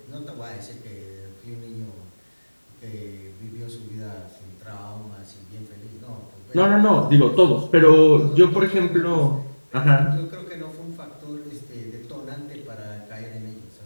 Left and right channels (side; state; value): both; inverted; correlation -1.00